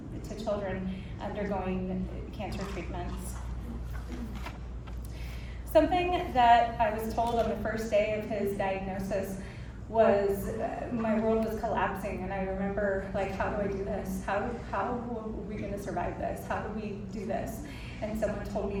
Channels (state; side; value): identical; both; correlation 1.00